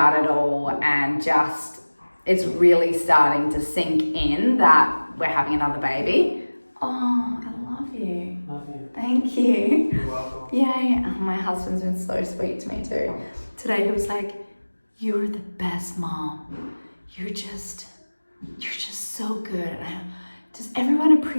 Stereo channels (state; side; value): inverted; both; correlation -1.00